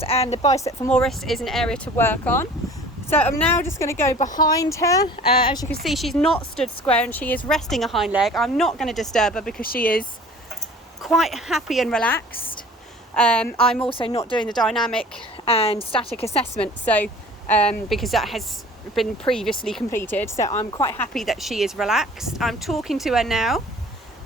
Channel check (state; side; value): normal; both; correlation 0.47